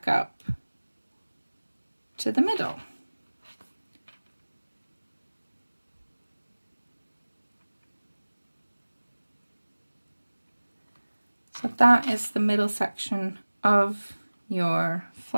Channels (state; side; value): inverted; both; correlation -1.00